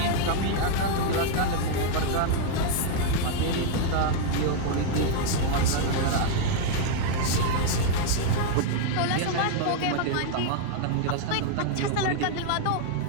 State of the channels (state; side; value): different; both; correlation 0.00